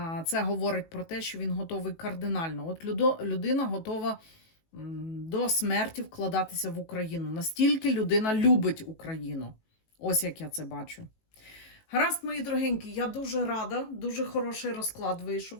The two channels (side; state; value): right; late; 18 ms